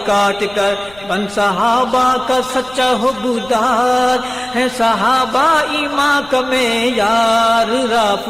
کاٹ کر بن صحابہ کا سچا حبدار ہے صحابہ ایمان کا معیار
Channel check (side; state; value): left; noise; rumble, 24 dB below the sound